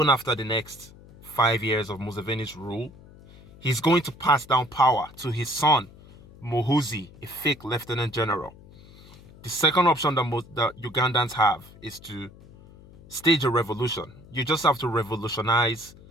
after the next 5 years of Museveni's rule, he's going to pass down power to his son, Muhoozi, a fake lieutenant general. The second option that Ugandans have is to stage a revolution. You just have to revolutionize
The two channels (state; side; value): noise; left; hum, 22 dB below the sound